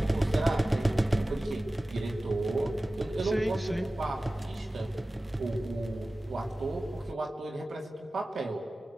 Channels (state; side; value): normal; both; correlation 0.96